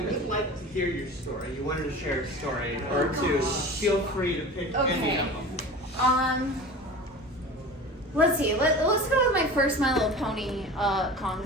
really would like to hear your story. You wanted to share a story or two. Feel free to pick any of them. Let's see. Let's go with my first My Little Pony con,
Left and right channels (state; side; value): normal; both; correlation 0.35